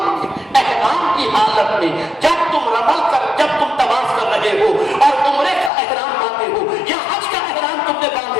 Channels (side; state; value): right; drops out; at 5.7 s